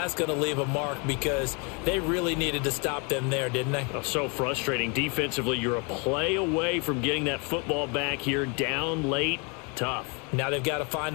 going to leave a mark because they really needed to stop them there, didn't they? Oh, so frustrating. Defensively, you're a play away from getting that football back here, down late. Tough. Now they've got to find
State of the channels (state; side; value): quieter; right; 33.0 dB